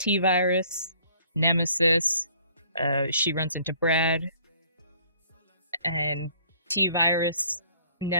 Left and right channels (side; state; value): both; inverted; correlation -0.58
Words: virus, Nemesis. She runs into Brad, and T virus